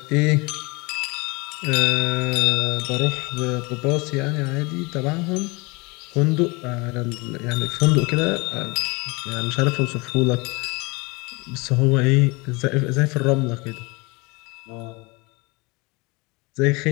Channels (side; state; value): right; quieter; 26.5 dB